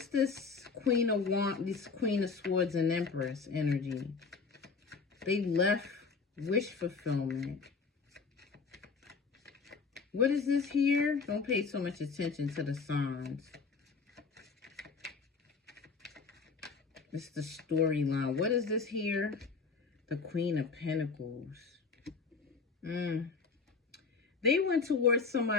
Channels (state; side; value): quieter; right; 4.9 dB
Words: this Queen of Wands, this Queen of Swords and Empress energy? They left wish fulfillment. What is this here? Don't pay so much attention to the signs. It's the storyline. What is this here? The Queen of Pentacles. They went towards